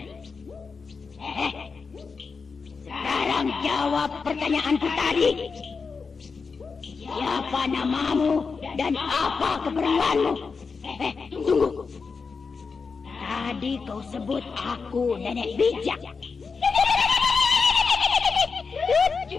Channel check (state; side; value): quieter; right; 5.0 dB